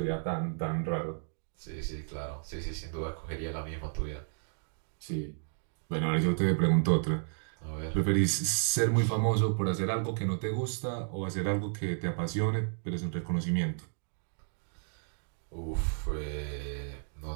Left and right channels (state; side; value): silent; left; 56 dB below the other